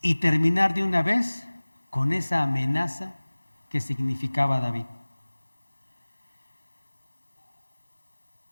y terminar de una vez con esa amenaza que significaba David.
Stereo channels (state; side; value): inverted; both; correlation -1.00